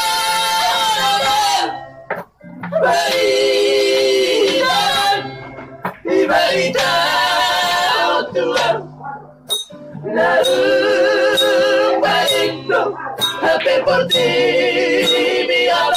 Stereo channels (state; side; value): identical; both; correlation 1.00